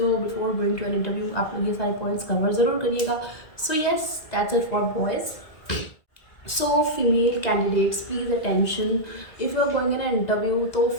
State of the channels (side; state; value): right; late; 1.9 ms